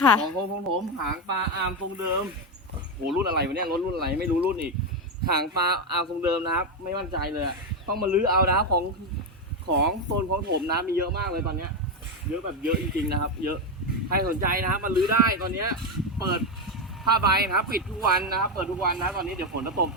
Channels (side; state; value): both; normal; correlation 0.08